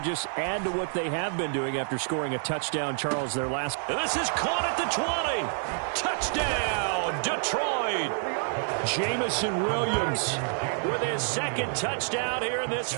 just add to what they have been doing after scoring a touchdown, Charles, their last. This is caught at the 20. Touchdown, Detroit. Jamison Williams with his 2nd touchdown here in this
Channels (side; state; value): left; silent; 59 dB below the other